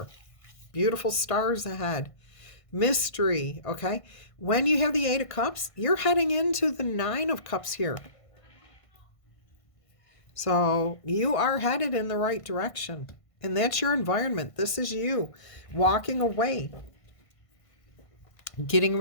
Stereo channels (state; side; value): late; right; 1.5 ms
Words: Beautiful stars ahead. Mystery. Okay? When you have the Eight of Cups, you're heading into the Nine of Cups here. So you are headed in the right direction. And that's your environment. This is you walking away. Getting